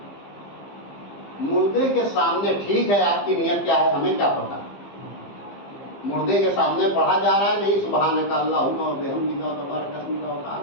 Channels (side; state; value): right; late; 15 ms